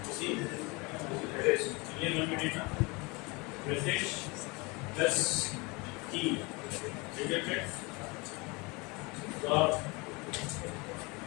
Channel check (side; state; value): right; quieter; 26.9 dB